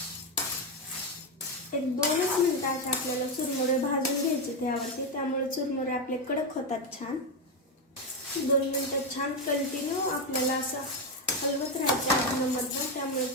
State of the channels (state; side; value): normal; both; correlation 0.08